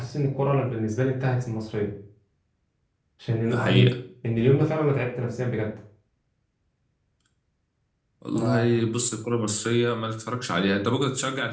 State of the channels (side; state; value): both; identical; correlation 1.00